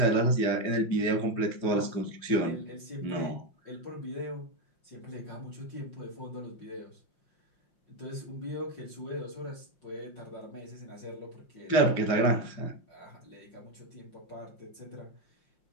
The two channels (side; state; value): right; late; 5.7 ms